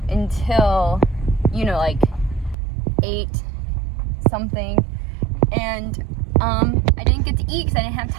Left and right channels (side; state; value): left; drops out; at 2.6 s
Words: until, you know, like 8 something, and I didn't get to eat because I didn't have